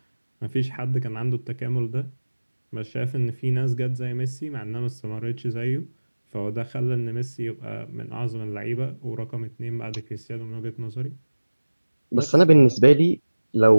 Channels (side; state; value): both; inverted; correlation -1.00